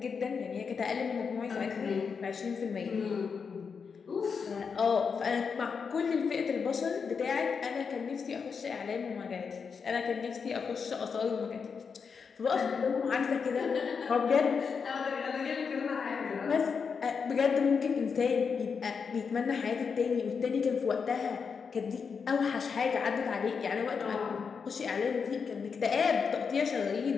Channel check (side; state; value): right; quieter; 5.8 dB